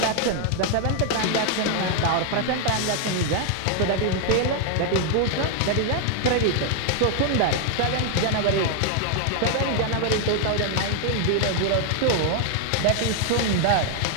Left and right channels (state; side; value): different; both; correlation 0.00